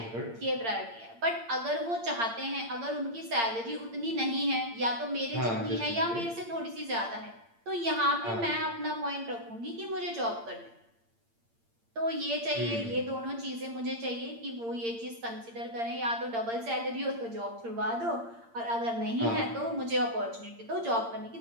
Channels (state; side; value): late; left; 8.7 ms